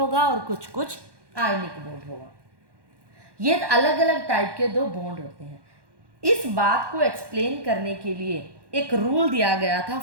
और कुछ कुछ आयनिक बॉन्ड होगा। ये अलग अलग टाइप के दो बॉन्ड होते हैं। इस बात को एक्सप्लेन करने के लिए एक रूल दिया गया था,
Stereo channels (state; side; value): late; left; 1.1 ms